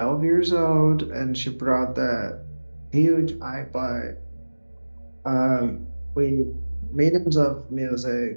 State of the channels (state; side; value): inverted; both; correlation -1.00